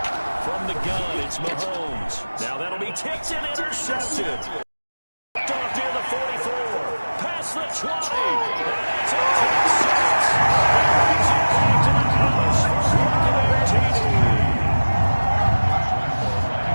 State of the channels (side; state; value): both; inverted; correlation -1.00